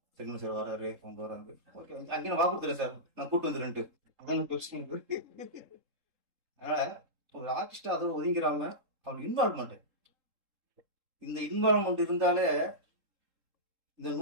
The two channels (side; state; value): left; late; 3.7 ms